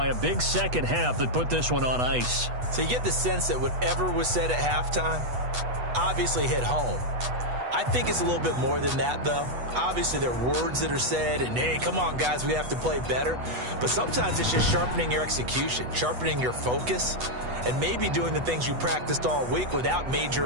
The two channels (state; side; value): late; left; 8.1 ms